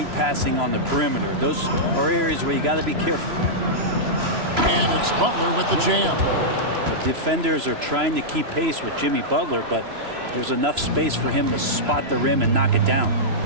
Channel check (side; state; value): left; late; 3.0 ms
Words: passing on the perimeter. Those are areas where you got to be careful. And it's Butler with the jam. The defenders are trying to keep pace with Jimmy Butler, but there's enough space for him to spot the rim and knock it down.